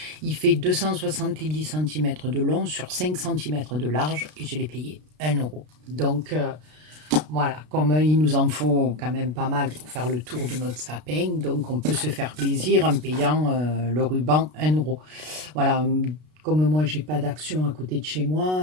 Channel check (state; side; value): late; left; 33 ms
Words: Il fait 270 cm de long sur 5 cm de large et je l'ai payé 1 euro. Donc, voilà, comme il nous en faut quand même pas mal pour faire le tour de notre sapin, donc on peut se faire plaisir en payant le ruban 1 euro. Voilà, comme moi j'ai pas d'action à côté de chez